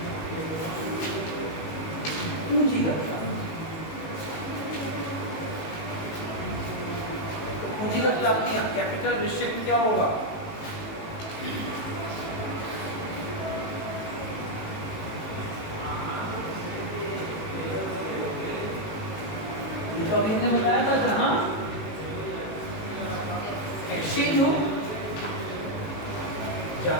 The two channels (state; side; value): late; right; 19 ms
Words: पूंजीगत प्राप्ति। पूंजीगत प्राप्तियां, कैपिटल रिसिप्ट क्या होगा? तो अभी हमने बताया था जहां एक्सचेंज हो,